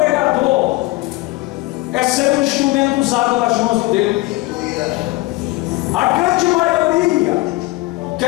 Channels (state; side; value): quieter; right; 20.8 dB